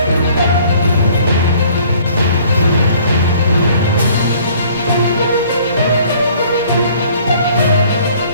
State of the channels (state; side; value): inverted; both; correlation -0.56